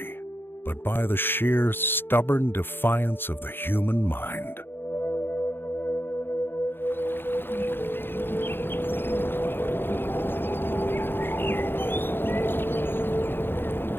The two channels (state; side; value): late; right; 0.10 ms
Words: but by the sheer, stubborn defiance of the human mind.